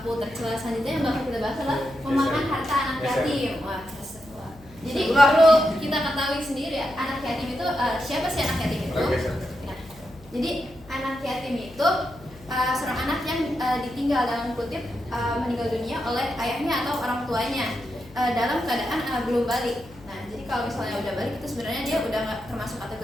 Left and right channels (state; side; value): noise; left; hum, 22 dB below the sound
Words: tercela selanjutnya yang bakal kita bahas adalah memakan harta anak yatim. Wah, jadi perlu kita ketahui sendiri ya, anak yatim itu siapa sih anak yatim itu? Nah, jadi anak yatim itu seorang anak yang ditinggal dalam kutip meninggal dunia oleh ayahnya atau orang tuanya dalam keadaan belum balik. Nah, jadi kalau misalnya udah balik itu sebenarnya dia udah nggak termasuk